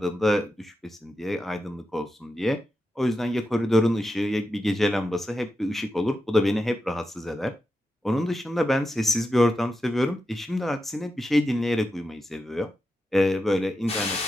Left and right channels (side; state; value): both; normal; correlation 0.89